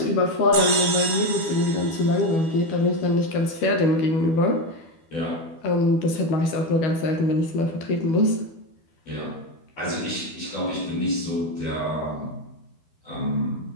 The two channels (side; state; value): right; late; 12 ms